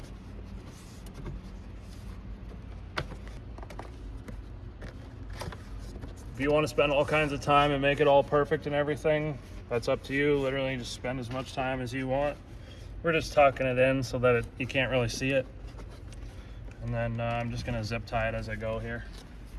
If you want to spend all kinds of time and make it all perfect and everything, that's up to you. Literally just spend as much time as you want. We're just tucking it in so that you can't really see it. And then I'm just gonna zip tie it as I go here.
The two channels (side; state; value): both; identical; correlation 1.00